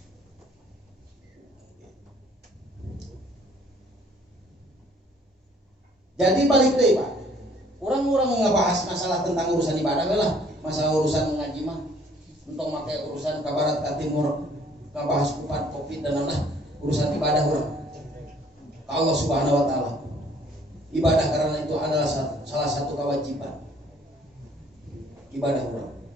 Jadi balik deh Pak. Orang-orang ngebahas masalah tentang urusan ibadah lah, masalah urusan ngaji mah. Untuk pakai urusan ke barat ke timur, ngebahas kupat covid dan lain-lain, urusan ibadah orang. Allah Subhanahu wa taala. Ibadah karena itu adalah salah satu kewajiban. Ibadah orang.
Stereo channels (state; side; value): normal; both; correlation 0.60